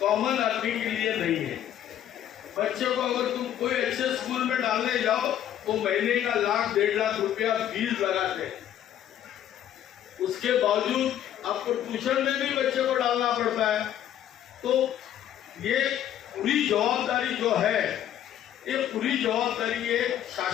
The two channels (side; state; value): right; quieter; 10.9 dB